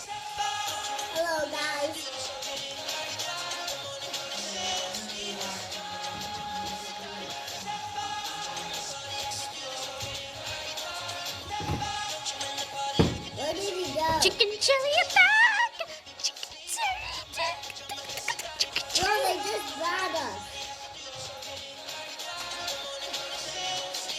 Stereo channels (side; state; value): both; identical; correlation 1.00